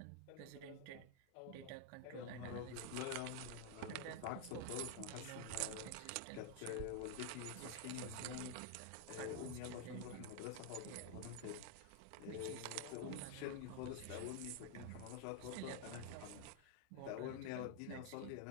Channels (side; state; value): both; different; correlation 0.00